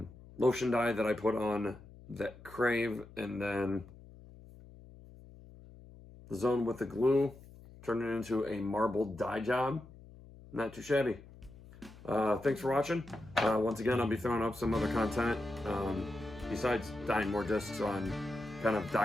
lotion dye that I put on that Crave, and then the zone with the glue, turned it into a marbled dye job. Not too shabby. Thanks for watching. Once again, I'll be throwing up some other content besides dyeing more discs, on kind of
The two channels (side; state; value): left; noise; hum, 20 dB below the sound